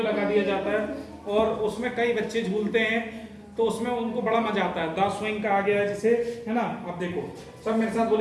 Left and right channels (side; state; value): both; identical; correlation 1.00